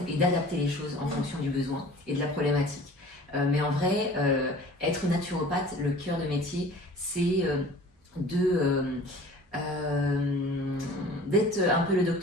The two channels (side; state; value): both; normal; correlation 0.45